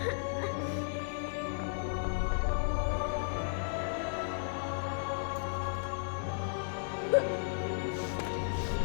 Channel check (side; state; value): right; silent; digital silence